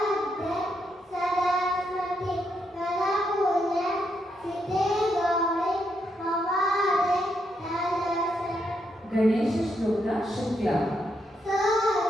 ಸರಸ್ವತಿ ಕರಪೂಜೆ ಸಿದ್ಧಿ ಗೌರಿ ಪವಾಡೆ ತಲಸ. ಗಣೇಶ ಶ್ಲೋಕ ಶುಕ್ಲ.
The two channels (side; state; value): both; normal; correlation 0.79